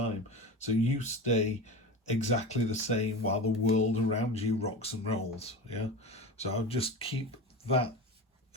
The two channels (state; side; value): normal; both; correlation 0.27